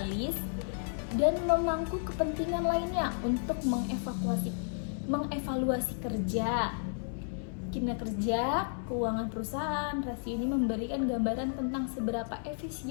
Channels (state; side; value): silent; right; 56 dB below the other